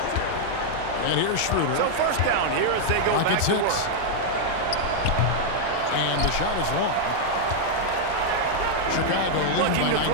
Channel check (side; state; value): both; different; correlation -0.01